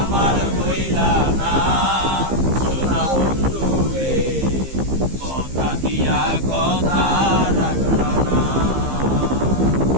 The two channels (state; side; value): late; left; 15 ms